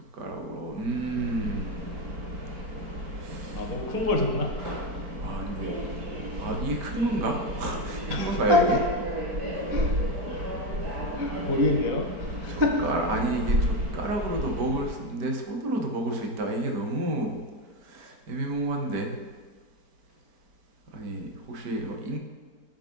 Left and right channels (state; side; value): late; left; 4.4 ms